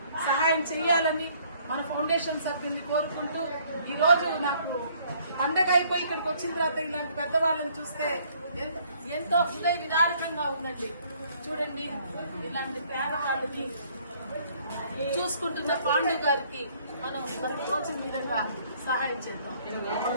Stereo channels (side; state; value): both; inverted; correlation -0.62